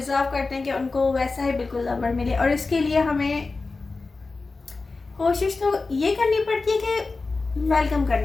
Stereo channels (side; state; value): right; quieter; 3.8 dB